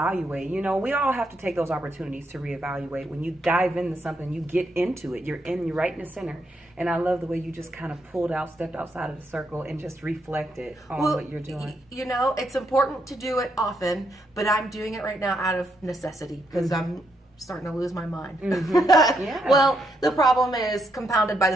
You know, we all have to take those opportunities to reevaluate. When you dive into something, you get into it. You're right in the center. And I love the way you just kind of stepped outside of the circle and just reflected on what you're doing. You know, it's important to do it often, but I'm doing it right now out of necessity because I'm starting to lose my mind. Yeah. Well, the problem is compounded by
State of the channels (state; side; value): normal; both; correlation 0.78